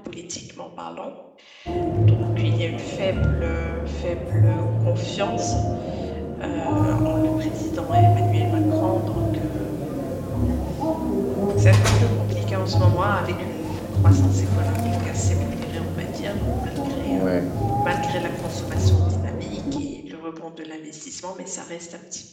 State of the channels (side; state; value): both; identical; correlation 1.00